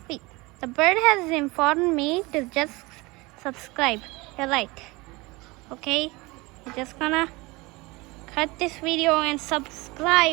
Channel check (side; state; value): left; quieter; 23.5 dB